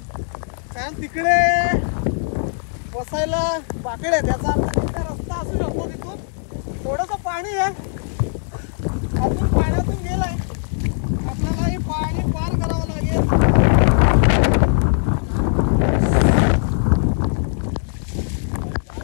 कारण तिकडे बसायला बाकडे, त्याचा रस्ता असू शकतो. तिथून थोडंसं पाणी आहे, अजून पाण्यातून गेलाय, आपल्याला हे पाणी पार करावं लागेल.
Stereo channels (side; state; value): right; silent; 66 dB below the other